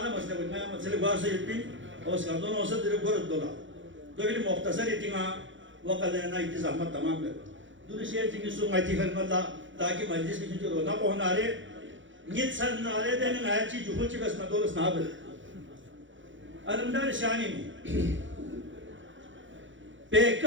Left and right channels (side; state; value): left; late; 0.56 ms